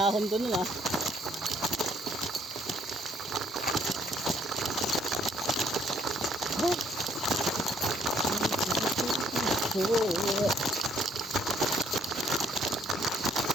to nun ah. Oh.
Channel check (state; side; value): normal; both; correlation 0.66